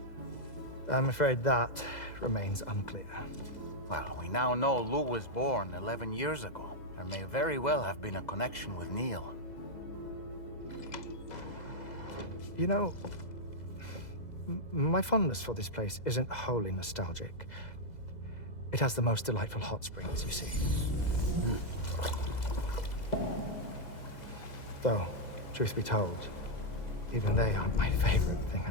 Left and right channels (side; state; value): right; late; 2.0 ms